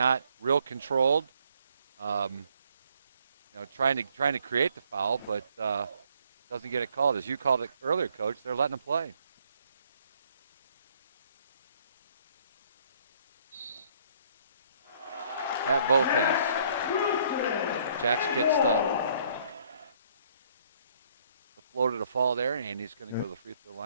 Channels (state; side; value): inverted; both; correlation -0.64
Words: real controlled. Trying to create the foul, but doesn't get it called. As you called it earlier, Coach, they're letting him play. At both ends. Jax gets the floater to fall there, and he's going to go to the free throw